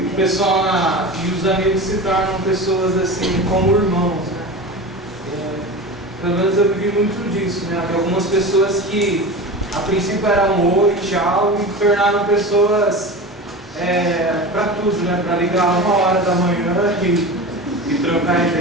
o pessoal e os amigos se tornam pessoas assim como irmãos, né? Pelo menos eu vivi muito disso, né? Havia algumas pessoas que a princípio era um oi, tchau, e tornaram pessoas para tudo, né? Para ligar 1h da manhã e trocar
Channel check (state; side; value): normal; both; correlation 0.30